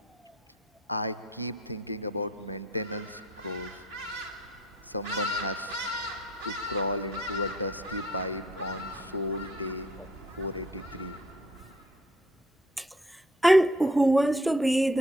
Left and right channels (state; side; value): normal; both; correlation 0.59